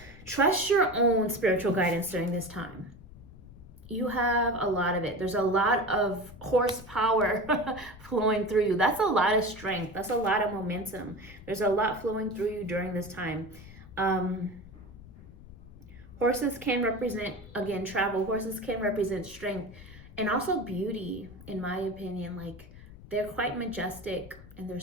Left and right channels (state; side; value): noise; left; rumble, 18 dB below the sound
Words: trust your own spiritual guidance during this time. you have a lot of it. There's a lot of horsepower flowing through you. That's a lot of strength. That's a lot of momentum. There's a lot flowing through you during this time. Horses can represent, again, travel. Horses can represent strength and also beauty, in my opinion. Like, they're quite majestic and they're